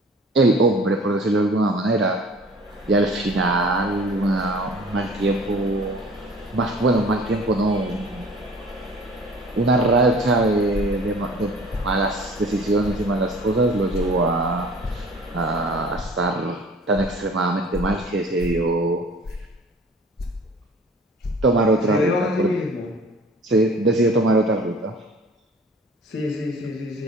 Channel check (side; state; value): both; normal; correlation 0.47